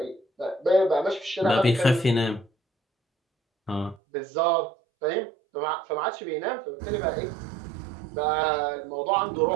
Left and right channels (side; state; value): left; drops out; at 4.0 s